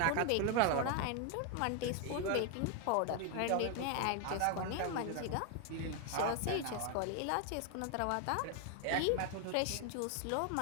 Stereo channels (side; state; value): both; different; correlation 0.01